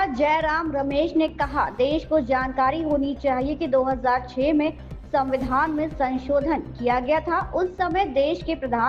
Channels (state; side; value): identical; both; correlation 1.00